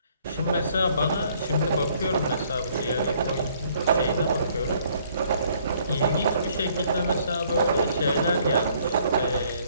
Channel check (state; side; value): inverted; both; correlation -0.63